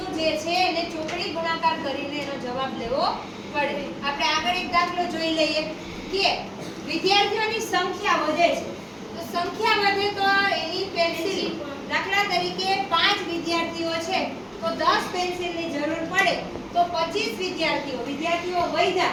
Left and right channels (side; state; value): both; identical; correlation 1.00